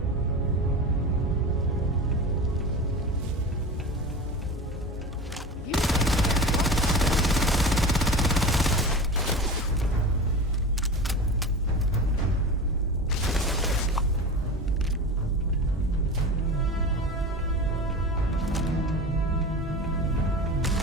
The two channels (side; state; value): both; normal; correlation 0.31